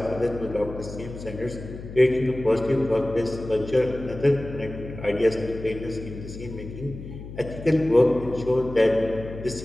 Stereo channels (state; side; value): noise; left; hum, 12 dB below the sound